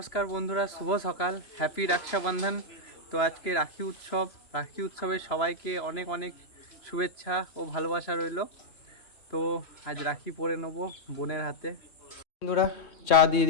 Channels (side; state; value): right; late; 3.0 ms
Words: বন্ধুরা, শুভ সকাল, হ্যাপি রক্ষাবন্ধন। তো আজকে রাখি উৎসবের সবাইকে অনেক অনেক শুভেচ্ছা ও ভালোবাসা রইল। তো আজ রাখি পরে নেবো বোনের হাতে। বন্ধুরা চা দিয়ে